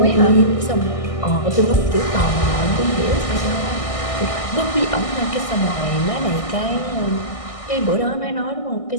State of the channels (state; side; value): late; right; 1.6 ms